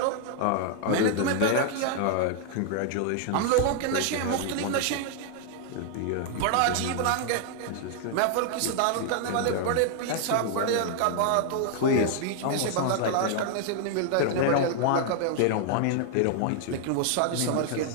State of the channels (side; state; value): both; different; correlation 0.00